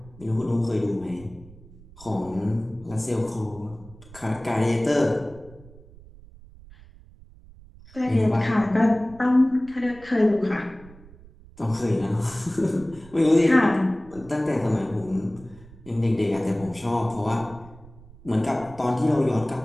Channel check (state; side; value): noise; right; rumble, 21 dB below the sound